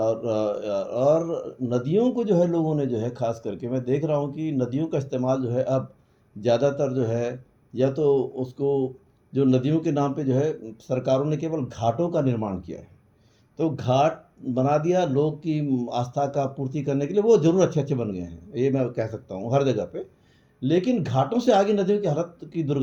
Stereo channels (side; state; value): both; identical; correlation 1.00